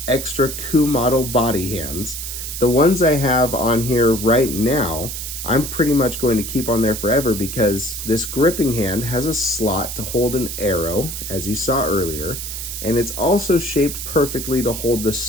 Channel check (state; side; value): noise; right; hiss, 7 dB below the sound